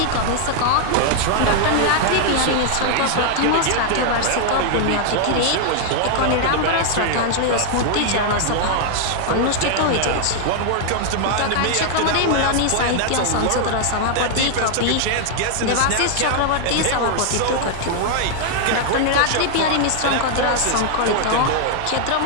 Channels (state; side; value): different; both; correlation 0.00